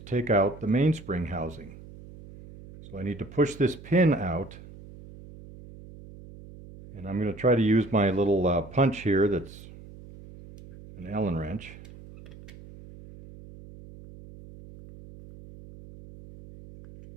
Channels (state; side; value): noise; right; hum, 18 dB below the sound